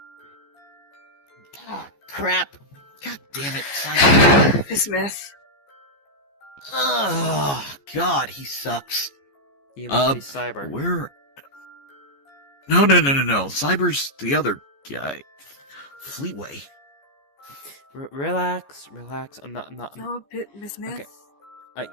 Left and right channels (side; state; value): right; late; 14 ms